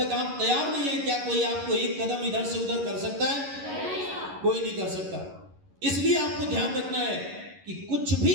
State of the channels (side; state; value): left; late; 11 ms